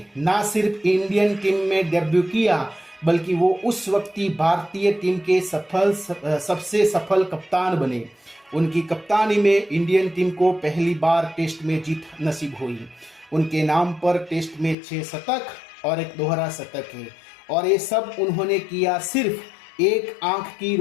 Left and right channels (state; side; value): drops out; right; at 14.8 s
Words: ना सिर्फ इंडियन टीम में डेब्यू किया बल्कि वो उस वक्ती भारतीय टीम के सबसे सफल कप्तान बने। उनकी कप्तानी में इंडियन टीम को पहली बार टेस्ट में जीत नसीब हुई। उनके नाम पर टेस्ट में 6 शतक और एक दोहरा शतक है और ये सब उन्होंने किया सिर्फ एक आंख की